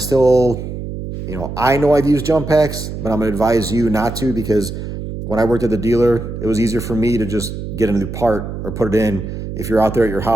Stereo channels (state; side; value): noise; right; hum, 7 dB below the sound